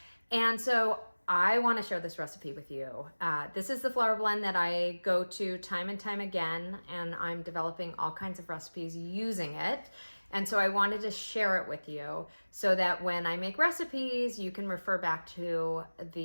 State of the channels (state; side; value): inverted; both; correlation -1.00